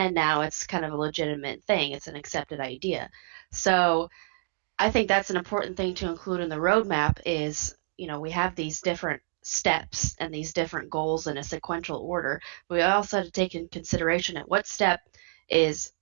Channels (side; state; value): left; silent; digital silence